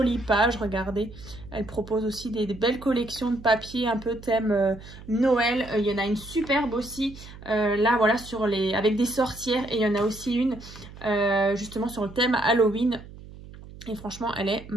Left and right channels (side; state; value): right; noise; hum, 17 dB below the sound